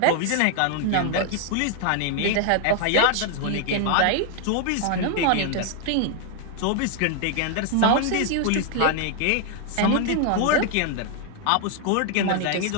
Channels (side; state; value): both; different; correlation 0.00